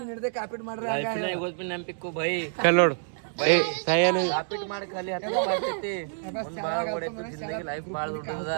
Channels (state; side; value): silent; left; digital silence